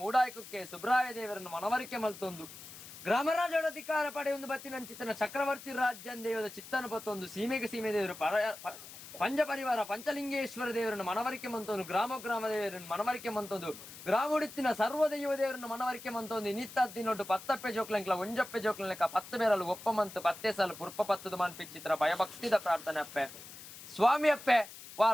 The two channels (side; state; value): left; noise; hiss, 15 dB below the sound